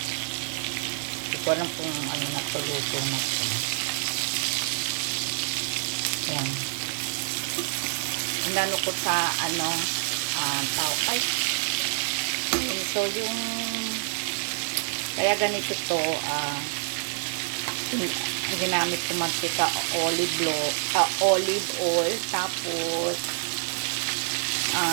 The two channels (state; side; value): silent; left; digital silence